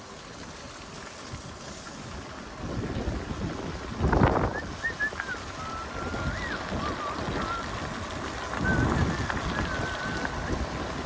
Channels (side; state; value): both; identical; correlation 1.00